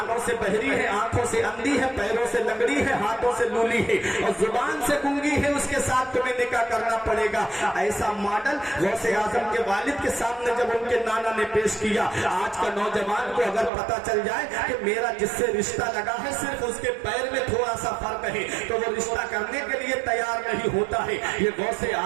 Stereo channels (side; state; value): left; drops out; at 13.7 s